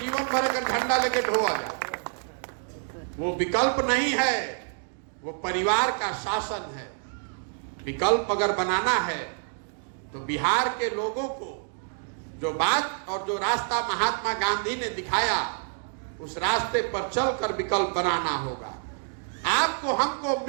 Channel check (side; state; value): left; silent; 60 dB below the other